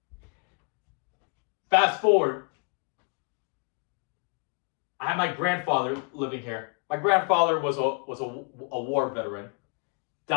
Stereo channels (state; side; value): quieter; right; 35.7 dB